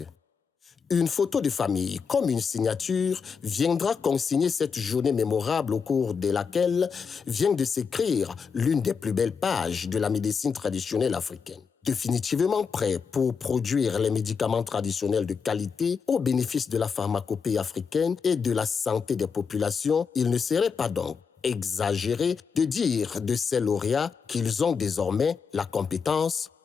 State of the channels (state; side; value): quieter; right; 5.9 dB